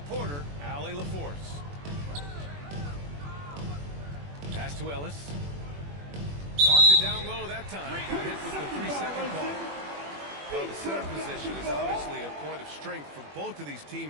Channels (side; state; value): left; late; 21 ms